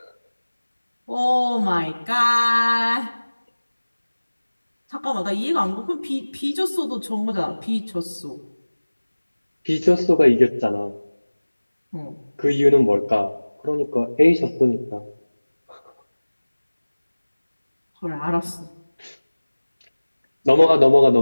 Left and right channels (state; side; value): inverted; both; correlation -1.00